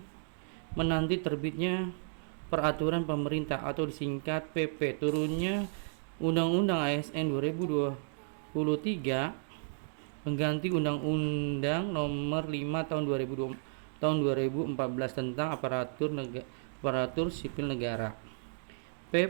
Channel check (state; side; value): silent; left; digital silence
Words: menanti terbitnya peraturan pemerintah atau disingkat PP turunnya Undang-Undang ASN 2023 mengganti Undang-Undang Nomor 5 tahun 2014 tentang aparatur sipil negara.